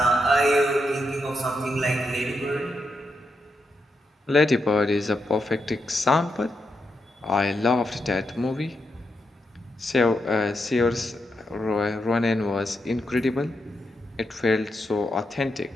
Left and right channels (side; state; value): both; normal; correlation 0.84